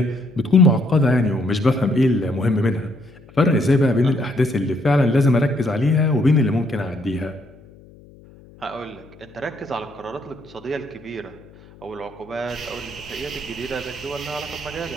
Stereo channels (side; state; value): left; noise; hum, 23 dB below the sound